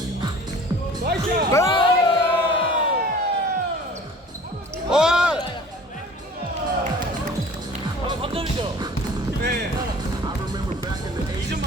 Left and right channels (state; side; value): normal; both; correlation 0.46